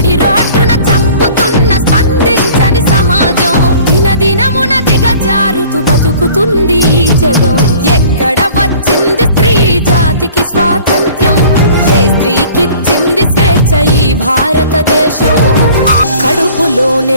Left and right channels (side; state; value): both; inverted; correlation -0.49